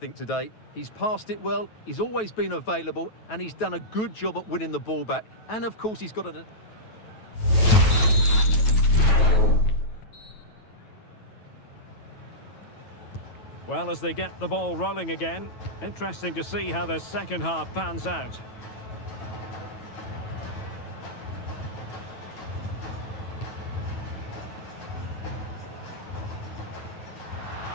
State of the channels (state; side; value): late; right; 9.2 ms